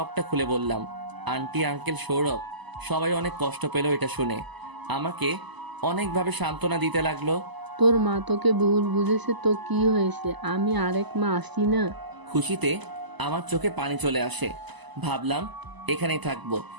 খুলে বললাম। আন্টি, আঙ্কেল, সৌরভ সবাই অনেক কষ্ট পেল এটা শুনে। আমাকে অনেকভাবে সান্ত্বনা দিতে লাগলো। তোর মা তোকে ভুল বুঝেছে তো কি হয়েছে, আমি আরেক মা আসি না? খুশিতে আমার চোখে পানি চলে আসে। ভাবলাম এখানেই থাকবো।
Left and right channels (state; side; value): late; left; 1.0 ms